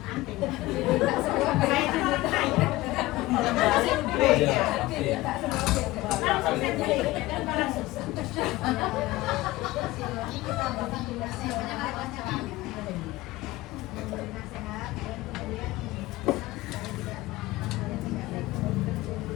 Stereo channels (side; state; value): right; quieter; 18.5 dB